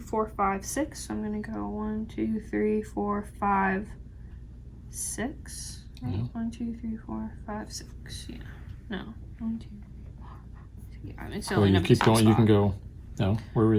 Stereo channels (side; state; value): both; identical; correlation 1.00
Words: 4, 5, 6. So I'm gonna go 1, 2, 3, 4, 5, 6. Right? Yeah. 1, 2, 3, 4, 5, 6. Yeah. No. 1, 2. Yeah, I mean, so Well, you keep going. You can go. No, where are